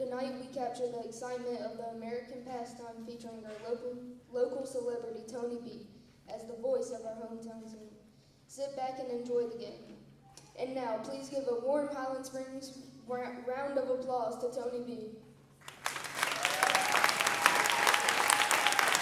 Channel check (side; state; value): both; identical; correlation 1.00